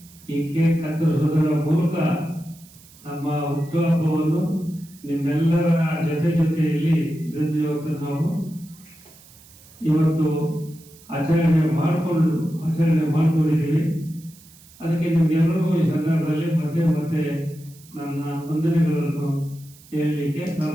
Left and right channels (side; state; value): right; noise; hiss, 24 dB below the sound